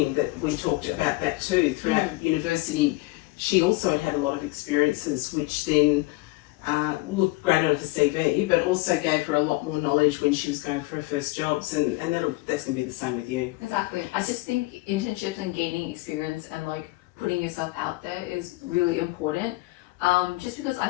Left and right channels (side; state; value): right; quieter; 21.4 dB